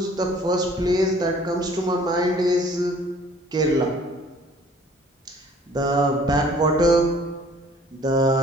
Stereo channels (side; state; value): both; normal; correlation 0.54